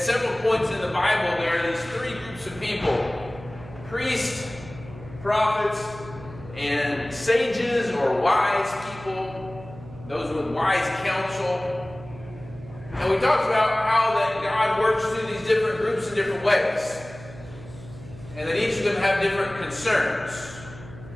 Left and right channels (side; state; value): right; noise; hum, 16 dB below the sound